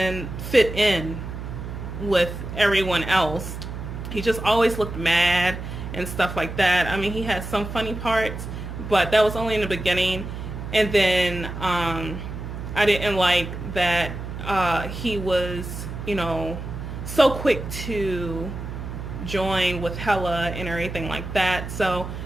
fit in with everyone else. He just always looked mad and stuff like that. I mean, he had some funny parts, but that was only in the beginning. And then I didn't like that he was, so quick to join with Hela and everything like that. So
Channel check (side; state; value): right; noise; hum, 8 dB below the sound